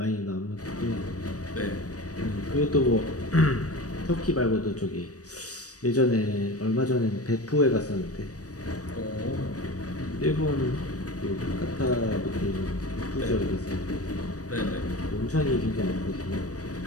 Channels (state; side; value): late; right; 0.67 ms